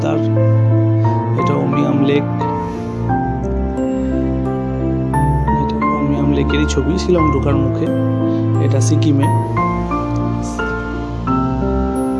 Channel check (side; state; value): both; identical; correlation 1.00